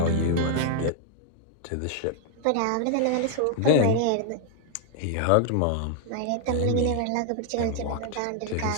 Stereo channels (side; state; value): both; different; correlation 0.00